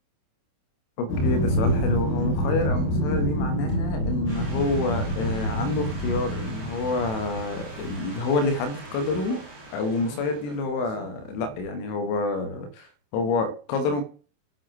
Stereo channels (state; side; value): late; right; 27 ms